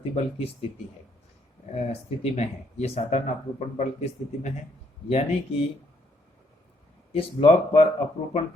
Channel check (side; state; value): both; normal; correlation 0.70